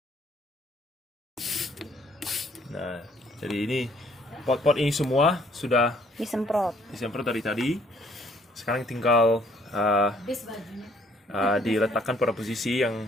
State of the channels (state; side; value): normal; both; correlation 0.63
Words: Nah, jadi ini pot-pot ini semua sudah Disemprot. disemprot dari tadi. Sekarang tinggal diletakkan pada posisi yang